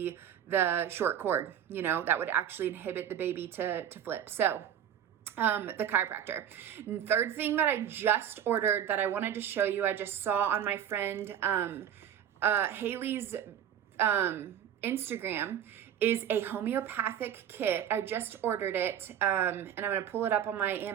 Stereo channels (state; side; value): quieter; left; 9.6 dB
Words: the short cord, you know, that would actually inhibit the baby to flip. So the chiropractor. And third thing that I just ordered that I wanted to show you, I just saw on my friend Haley's Instagram, is a homeopathic kit. I just ordered it, and I'm going to pull it up on my